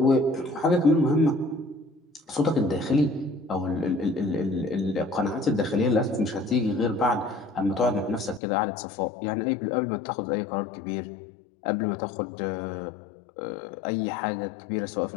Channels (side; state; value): right; drops out; at 8.4 s